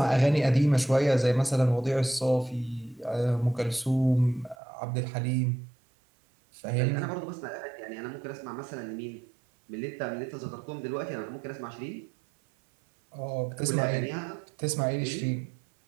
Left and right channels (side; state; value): left; drops out; at 4.5 s